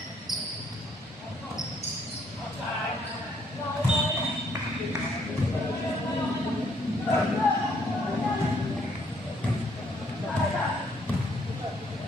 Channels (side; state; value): both; normal; correlation 0.68